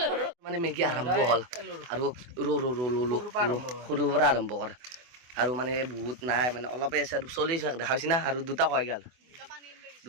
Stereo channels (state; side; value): late; left; 24 ms